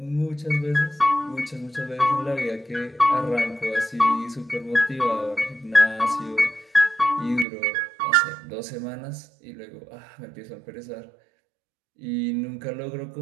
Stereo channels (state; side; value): drops out; left; at 7.5 s